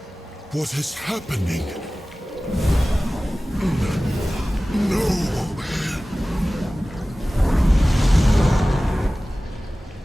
What is happening? No!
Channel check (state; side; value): normal; both; correlation 0.97